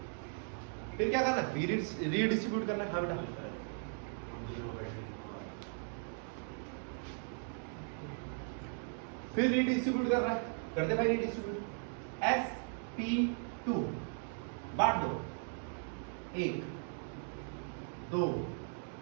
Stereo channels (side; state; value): left; silent; 53 dB below the other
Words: फिर क्या करना है? रीडिस्ट्रीब्यूट करना है। हाँ बेटा फिर रीडिस्ट्रीब्यूट कर रहा है, कर दे भाई रीडिस्ट्रीब्यूट। sp2 बांट दो, 1 2